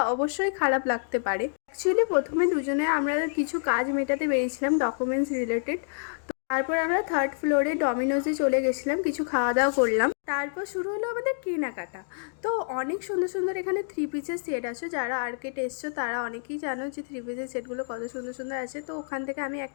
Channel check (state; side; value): silent; right; digital silence